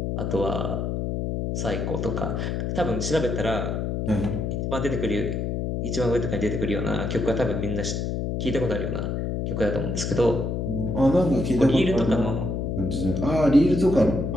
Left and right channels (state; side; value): noise; left; hum, 1 dB below the sound